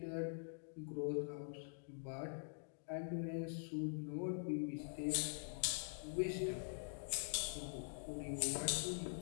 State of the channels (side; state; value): right; silent; digital silence